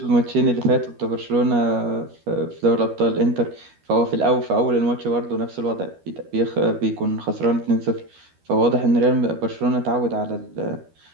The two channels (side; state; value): left; late; 12 ms